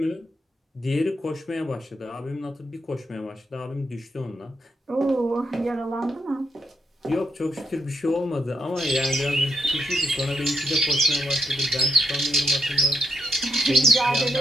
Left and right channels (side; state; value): both; normal; correlation 0.78